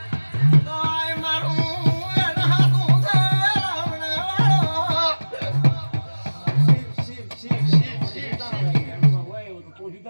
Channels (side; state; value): both; inverted; correlation -1.00